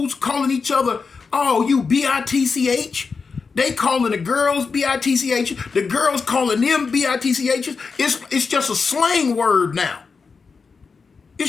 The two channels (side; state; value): right; quieter; 5.0 dB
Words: calling each other, oh, you B-I-T-C-H. They calling the girls B-I-T-C-H. The girls calling them B-I-T-C-H. It's just a slang word now.